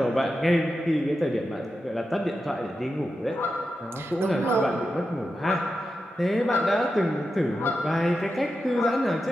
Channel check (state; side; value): normal; both; correlation 0.89